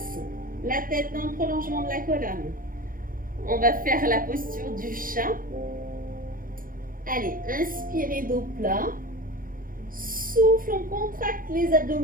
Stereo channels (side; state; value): left; late; 0.41 ms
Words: la tête dans le prolongement de la colonne. On va faire la posture du chat. Allez, inspirez dos plat. Souffle, on contracte les